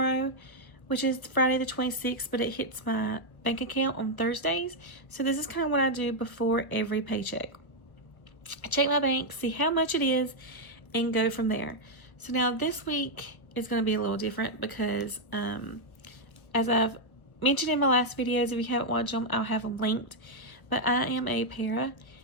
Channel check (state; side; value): late; right; 1.2 ms